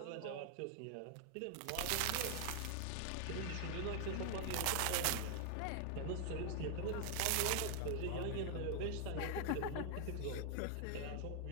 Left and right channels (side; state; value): both; different; correlation 0.00